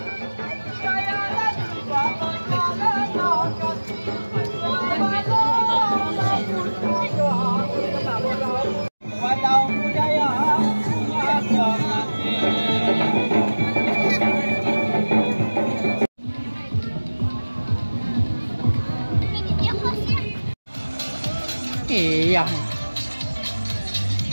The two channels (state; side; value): inverted; both; correlation -1.00